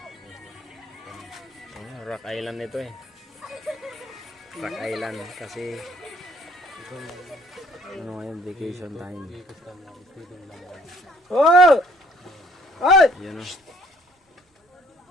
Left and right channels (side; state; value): both; normal; correlation 0.60